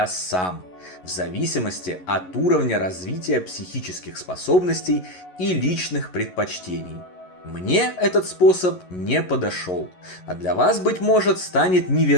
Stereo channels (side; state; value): right; late; 11 ms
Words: сам, в зависимости от уровня развития психических способностей и личных предпочтений. Мне этот способ не подошел, а для вас, быть может, станет